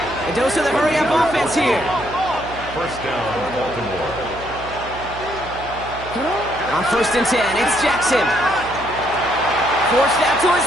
A dose of the hurry-up offense here. 1st down, Baltimore. On 1st and 10, it's Jackson. Forced out to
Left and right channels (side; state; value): right; noise; hum, 14 dB below the sound